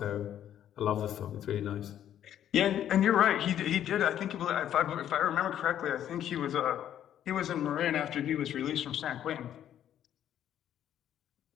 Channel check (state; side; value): quieter; right; 10.7 dB